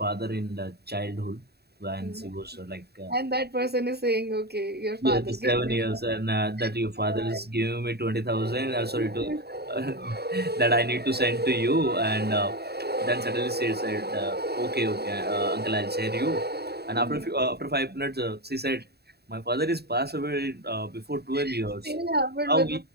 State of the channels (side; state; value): left; late; 0.47 ms